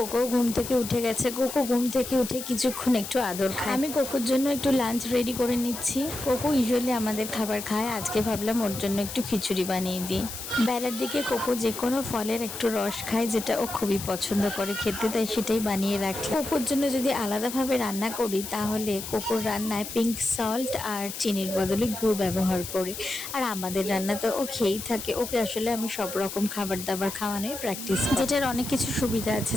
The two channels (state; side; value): noise; left; hiss, 9 dB below the sound